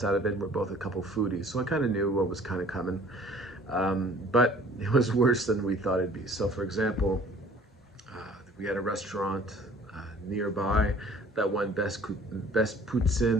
out of it. We're both a couple foodies, so I kind of knew what was kind of coming. But it was worse than we thought it'd be. So, for example, we had a restaurant nearby that won best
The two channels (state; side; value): normal; both; correlation 0.52